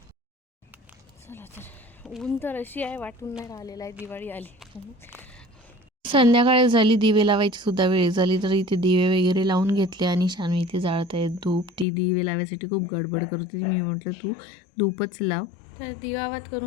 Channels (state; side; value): drops out; right; at 11.9 s